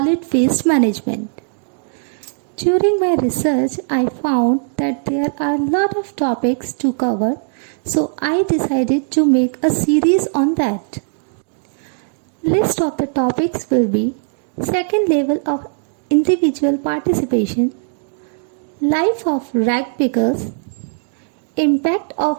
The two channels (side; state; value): left; silent; digital silence